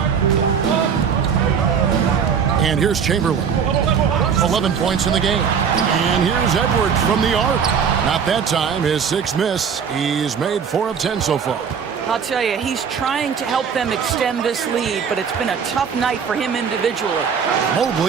And here's Chamberlain. 11 points in the game. And here's Edwards from the arc. Not that time. His 6th miss. He's made 4 of 10 so far. I'll tell you, he's trying to help them extend this lead, but it's been a tough night for him individually.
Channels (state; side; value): quieter; left; 6.9 dB